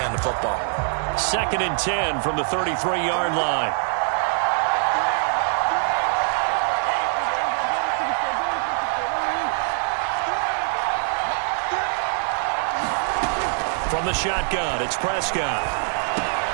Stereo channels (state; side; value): silent; left; 57 dB below the other